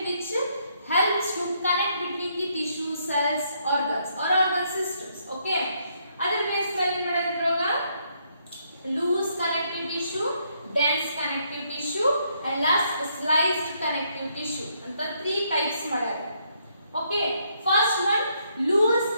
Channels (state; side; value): inverted; both; correlation -0.73